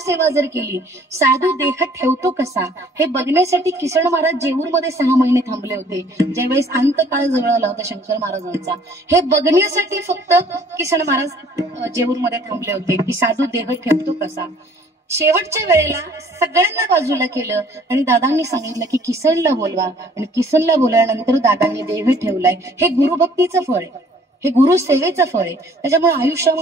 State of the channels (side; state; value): both; normal; correlation 0.57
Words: जर केली, साधू देह ठेवतो कसा हे बघण्यासाठी किसन महाराज जेऊरमध्ये 6 महिने थांबले होते. ज्यावेळेस अंतकाळ जवळ आला होता शंकर महाराजांचा, हे बघण्यासाठी फक्त किसन महाराज जेऊरमध्ये थांबले होते की साधू देह ठेवतो कसा. शेवटच्या वेळेला सगळ्यांना बाजूला केलं आणि दादांनी सांगितलं की किसनला बोलवा आणि किसनला बोलल्यानंतर दादांनी देह ठेवलाय. हे गुरुभक्तीचं फळ आहे, हे गुरुसेवेचं फळ आहे. त्याच्यामुळे